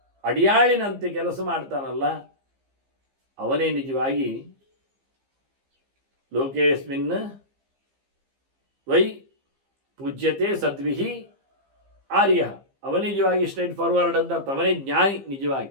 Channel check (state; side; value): late; left; 15 ms